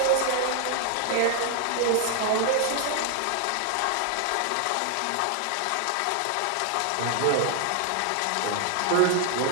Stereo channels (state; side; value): different; both; correlation 0.00